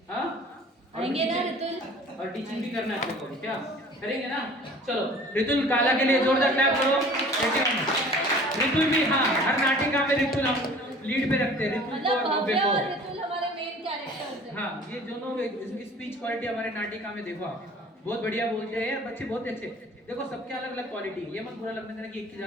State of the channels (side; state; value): both; normal; correlation 0.47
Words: हाँ आएंगे ना रितुल, और टीचिंग भी करना चाहते हो क्या? करेंगे ना? चलो रितुल काला के लिए जोरदार क्लैप करो। रितुल भी, हाँ हर नाटिका में रितुल हम लीड पे रखते हैं, रितुल को और भव्य को। रितुल हमारे मेन कैरेक्टर्स हैं। हाँ ये दोनों, इसकी स्पीच क्वालिटी हमारे नाटिका में देखो आप, बहुत बढ़िया बोलते हैं बच्चे, बहुत अच्छे। देखो सबके अलग अलग क्वालिटी, ये मत बुरा लगने देना कि एक की